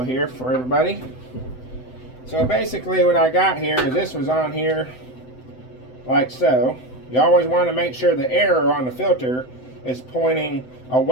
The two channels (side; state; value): right; late; 7.9 ms